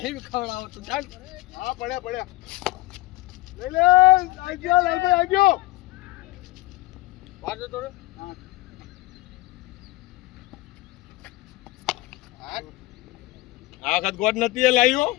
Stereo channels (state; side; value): quieter; right; 19.6 dB